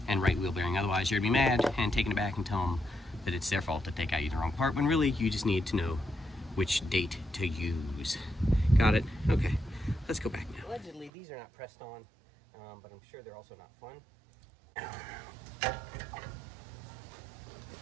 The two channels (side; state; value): left; drops out; at 11.1 s